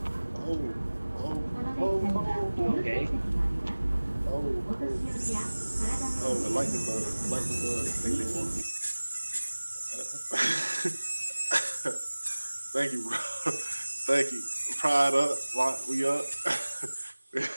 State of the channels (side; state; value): both; inverted; correlation -1.00